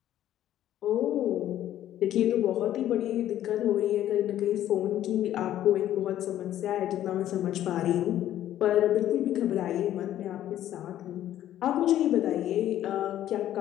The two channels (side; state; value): right; quieter; 12.2 dB